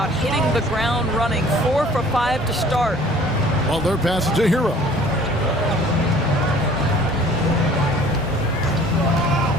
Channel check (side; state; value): both; normal; correlation 0.51